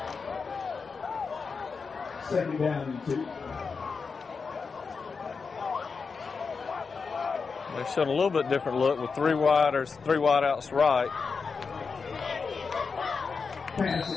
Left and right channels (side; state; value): right; quieter; 5.1 dB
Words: Second down and 2. They're showing a little bit different look with 3 wideouts right. Pass